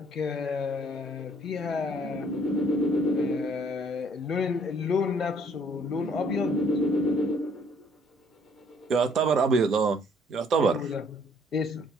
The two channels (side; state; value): both; normal; correlation 0.62